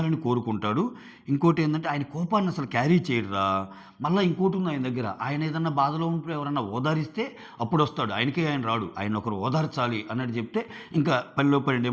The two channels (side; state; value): both; identical; correlation 1.00